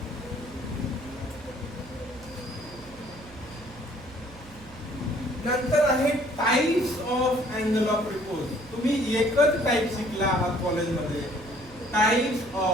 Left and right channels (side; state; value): right; noise; hum, 20 dB below the sound